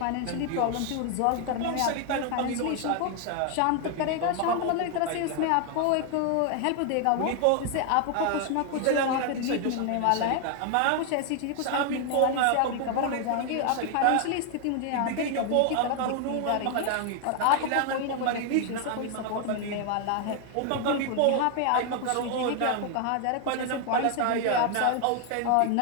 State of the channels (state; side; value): different; both; correlation 0.00